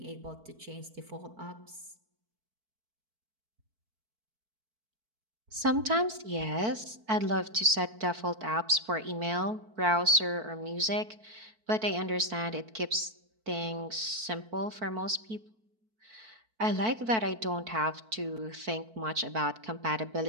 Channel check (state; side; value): late; left; 4.5 ms